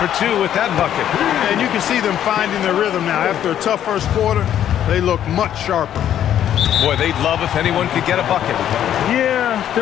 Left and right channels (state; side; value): quieter; right; 10.6 dB